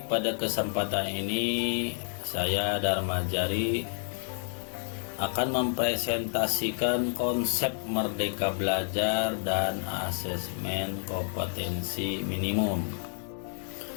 pada kesempatan ini saya Dharma Jari akan mempresentasikan konsep Merdeka Belajar dan asesmen kompetensi minimum.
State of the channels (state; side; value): silent; right; 58 dB below the other